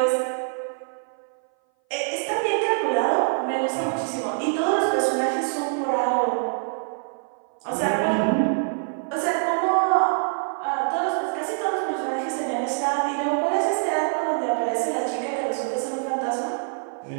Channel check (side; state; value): left; silent; 58 dB below the other